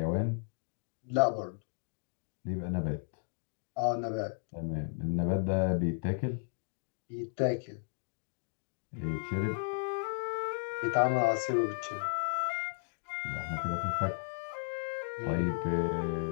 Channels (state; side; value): silent; right; digital silence